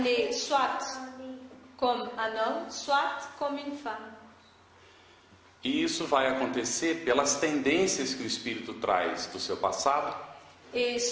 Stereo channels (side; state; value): both; identical; correlation 1.00